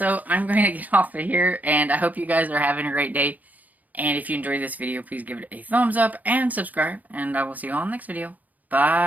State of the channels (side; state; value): left; late; 0.079 ms